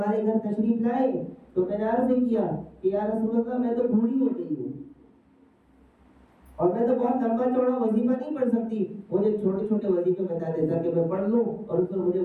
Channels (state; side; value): identical; both; correlation 1.00